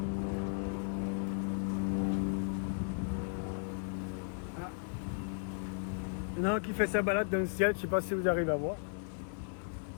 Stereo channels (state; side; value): silent; right; digital silence